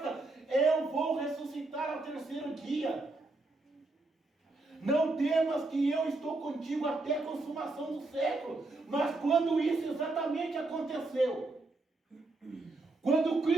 eu vou ressuscitar ao terceiro dia. Não temas, que eu estou contigo até a consumação do século. Mas quando isso exatamente aconteceu, quando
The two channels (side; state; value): left; quieter; 3.2 dB